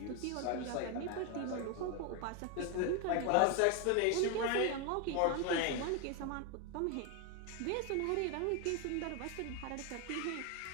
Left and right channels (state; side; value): different; both; correlation 0.01